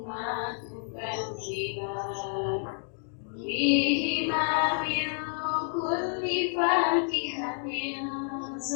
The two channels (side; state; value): right; silent; 58 dB below the other